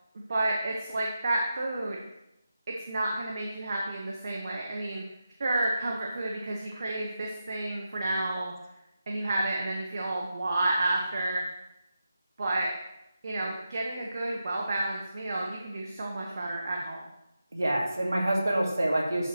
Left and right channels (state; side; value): inverted; both; correlation -0.89